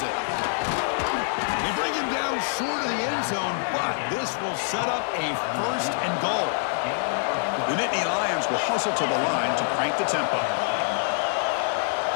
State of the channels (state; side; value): silent; right; 61 dB below the other